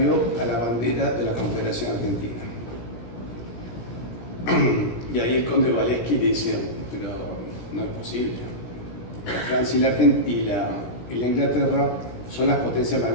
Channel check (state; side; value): late; right; 17 ms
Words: a la bandera de la Confederación Argentina. Y ahí el conde Valeschi le dice, pero no es posible. La Francia y la Inglaterra son las potencias más